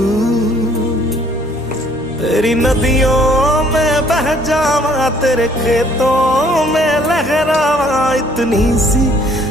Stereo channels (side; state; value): right; noise; hum, 18 dB below the sound